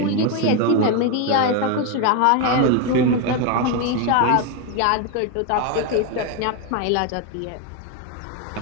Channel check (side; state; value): both; different; correlation 0.02